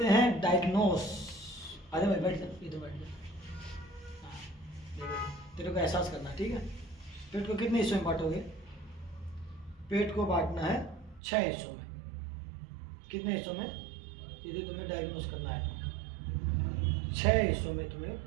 हैं डायग्नोस। अरे भाई बैठ जा, इधर बैठ जा। हाँ, ये बैठ। तेरे को एहसास करना, ठीक है। पेट को कितने हिस्सों में बांटोगे? पेट को बांटना है 6 हिस्सों में। कितने हिस्सों में? यदि तुम्हें डायग्नोस करना है तो 6 हिस्सों में तुम्हें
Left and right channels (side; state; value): left; drops out; at 11.2 s